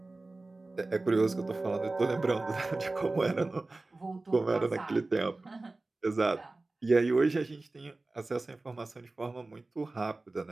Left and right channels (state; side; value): quieter; left; 3.2 dB